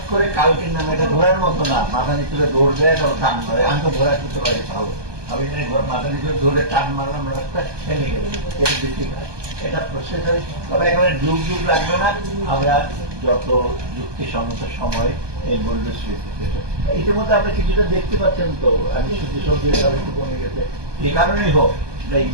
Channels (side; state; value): left; late; 1.2 ms